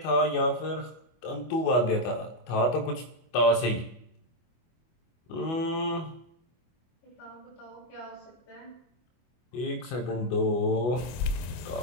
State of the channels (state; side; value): late; right; 25 ms